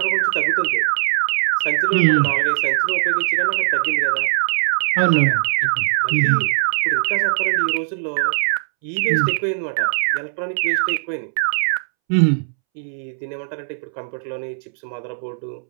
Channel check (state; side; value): silent; left; 66 dB below the other